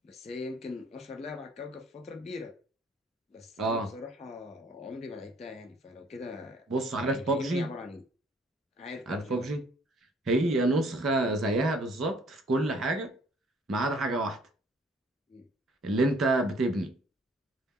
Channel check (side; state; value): both; normal; correlation 0.59